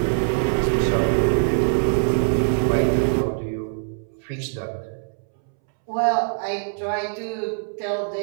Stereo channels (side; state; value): left; silent; 63 dB below the other